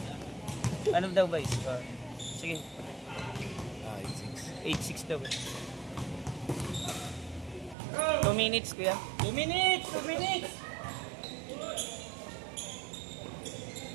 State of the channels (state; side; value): drops out; left; at 7.8 s